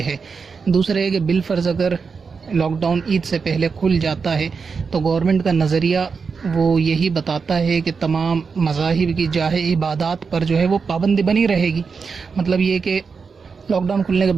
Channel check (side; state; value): left; quieter; 5.3 dB